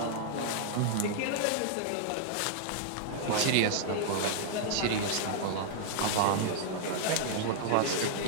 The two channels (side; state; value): both; different; correlation -0.01